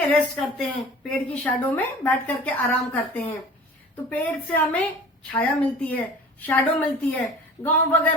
रेस्ट करते हैं, पेड़ की शैडो में बैठ करके आराम करते हैं। तो पेड़ से हमें छाया मिलती है, शैडो मिलती है। गांव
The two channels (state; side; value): normal; both; correlation 0.41